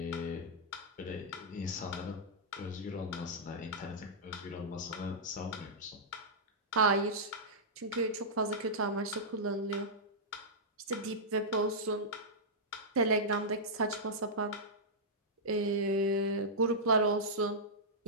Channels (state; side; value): normal; both; correlation -0.12